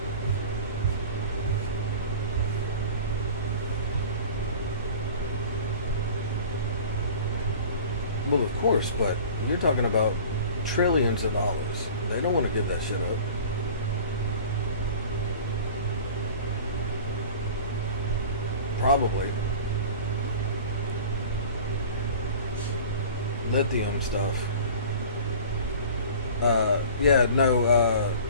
Well, of course, but you're talking about trillions of dollars. They don't want to give that shit up. Probably. Lithium stuff.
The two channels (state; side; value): inverted; both; correlation -0.40